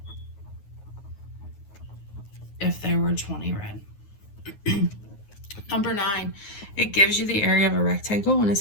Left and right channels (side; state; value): right; late; 9.5 ms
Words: if there were 20 red. Number 9, it gives you the area of a rectangle, and it